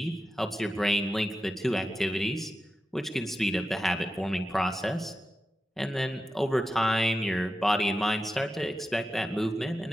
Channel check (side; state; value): both; normal; correlation 0.91